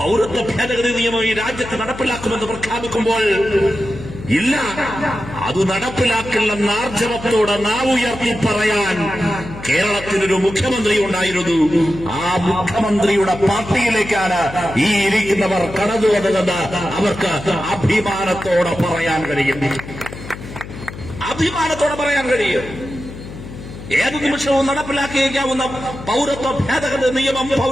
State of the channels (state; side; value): noise; left; hum, 13 dB below the sound